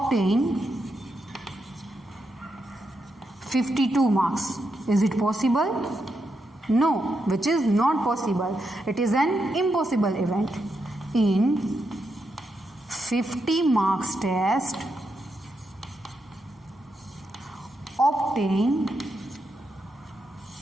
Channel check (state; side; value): normal; both; correlation 0.83